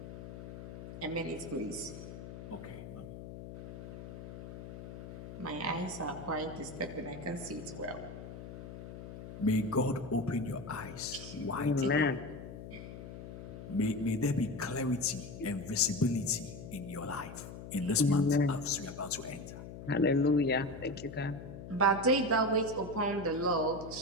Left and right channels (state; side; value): noise; left; hum, 11 dB below the sound